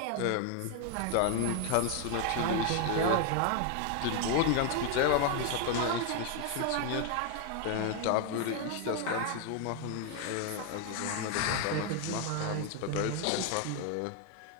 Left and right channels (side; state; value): both; different; correlation 0.01